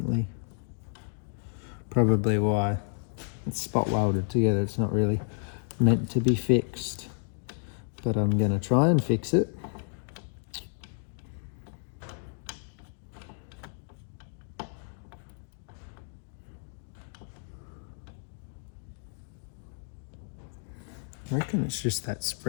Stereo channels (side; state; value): right; silent; 57 dB below the other